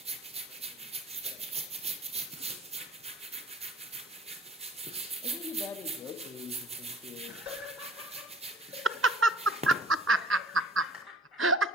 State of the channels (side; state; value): both; normal; correlation 0.49